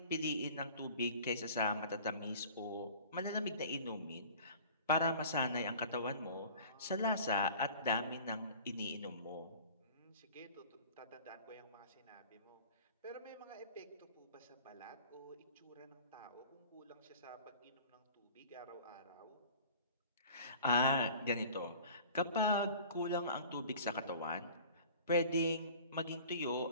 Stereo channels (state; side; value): inverted; both; correlation -0.44